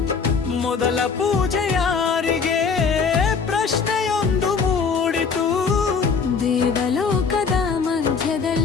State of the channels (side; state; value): right; quieter; 5.4 dB